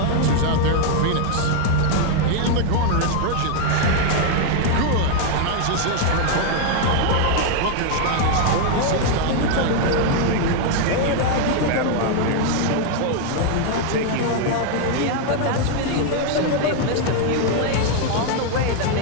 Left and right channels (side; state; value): both; different; correlation 0.00